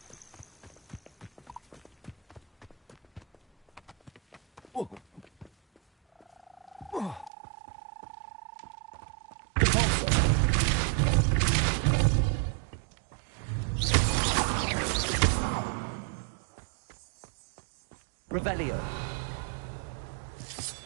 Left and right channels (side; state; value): left; drops out; at 7.3 s